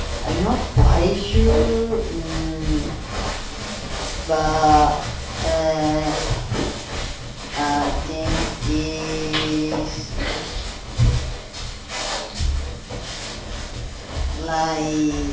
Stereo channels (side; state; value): both; identical; correlation 1.00